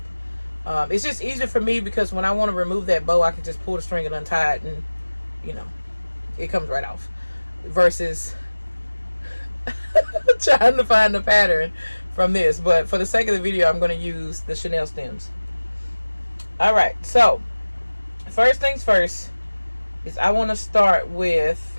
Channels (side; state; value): both; inverted; correlation -1.00